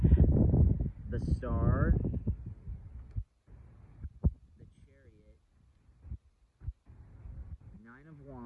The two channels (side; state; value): both; identical; correlation 1.00